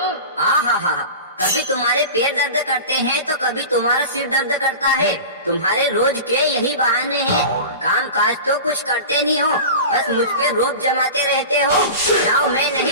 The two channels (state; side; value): inverted; both; correlation -0.32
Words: हा, कभी तुम्हारे पैर दर्द करते हैं तो कभी तुम्हारा सिर दर्द करता है। तुम्हारे रोज के यही बहाने हैं। काम काज तो कुछ करते नहीं हो, बस मुझ पे रोब जमाते रहते हो। जाओ, मैं